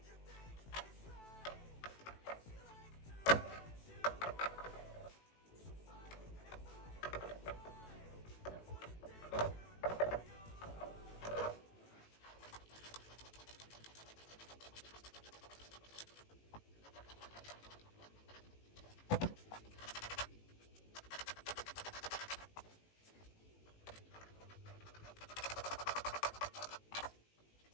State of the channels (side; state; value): right; late; 18 ms